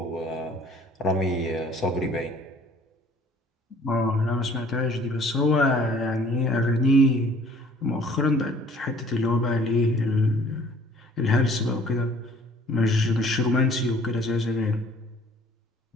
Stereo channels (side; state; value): both; normal; correlation 0.54